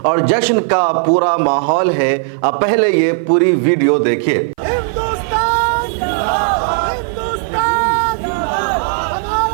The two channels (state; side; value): silent; left; 57 dB below the other